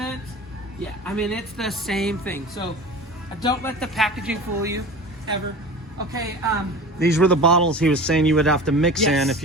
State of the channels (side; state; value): both; normal; correlation 0.36